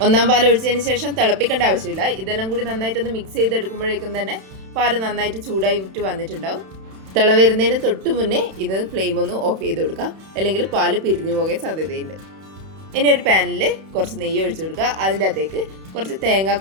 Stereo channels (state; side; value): late; left; 31 ms